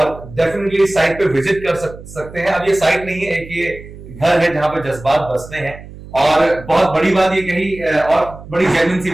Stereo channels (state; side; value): noise; right; hum, 16 dB below the sound